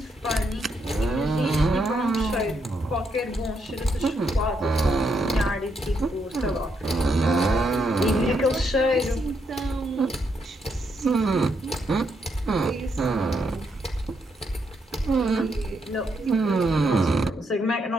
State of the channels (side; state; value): both; normal; correlation 0.78